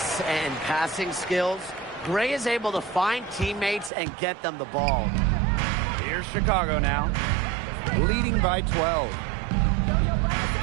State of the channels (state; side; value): drops out; left; at 3.9 s